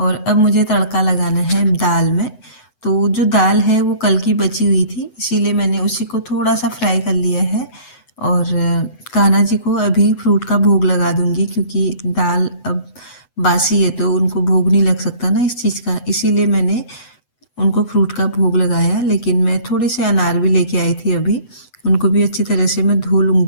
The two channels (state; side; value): late; right; 8.0 ms